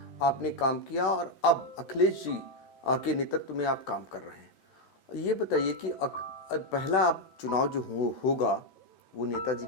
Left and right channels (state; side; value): late; right; 13 ms